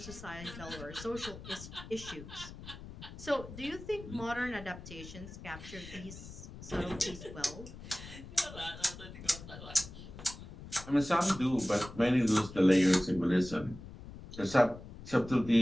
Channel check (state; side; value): noise; left; rumble, 14 dB below the sound